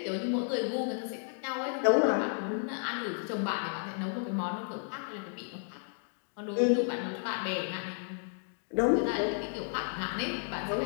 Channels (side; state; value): right; silent; 56 dB below the other